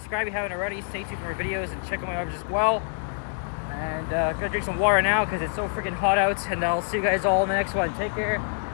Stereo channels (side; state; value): right; silent; digital silence